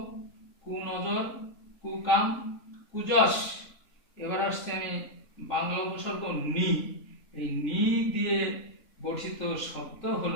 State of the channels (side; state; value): right; late; 3.6 ms